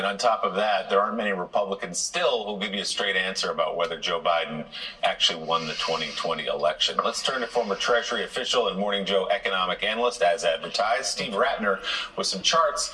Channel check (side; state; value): both; identical; correlation 1.00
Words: on top of that, there aren't many Republicans still who'll give you a straight answer about whether Joe Biden actually won the 2020 election. Let's turn to former Treasury official and Morning Joe economic analyst, as advertised, Steve Ratner, with some charts